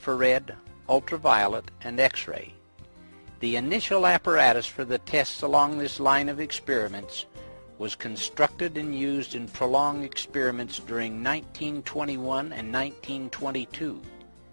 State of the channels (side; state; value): both; inverted; correlation -1.00